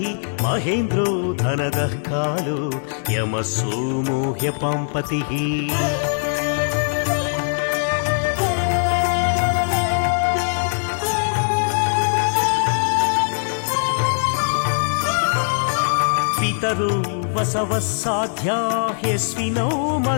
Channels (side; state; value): right; silent; digital silence